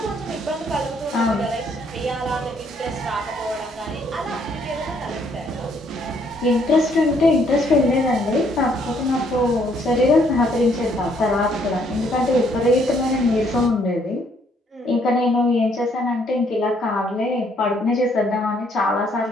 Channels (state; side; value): normal; both; correlation 0.68